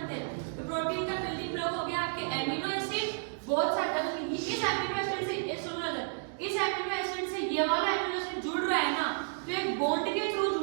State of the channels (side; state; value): left; silent; digital silence